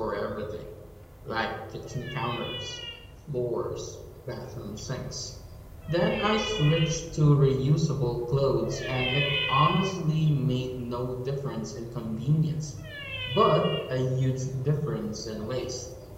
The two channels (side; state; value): both; identical; correlation 1.00